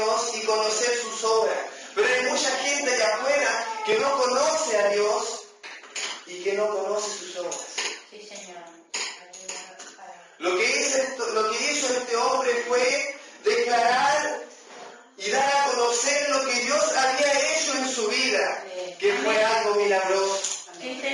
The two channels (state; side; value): identical; both; correlation 1.00